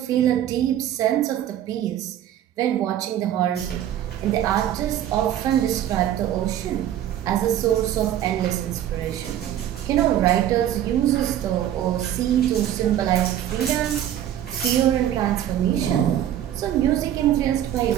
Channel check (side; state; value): left; quieter; 11.3 dB